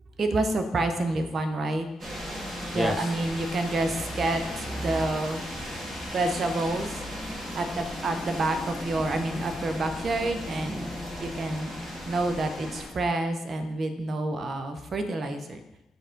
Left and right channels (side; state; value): both; normal; correlation 0.84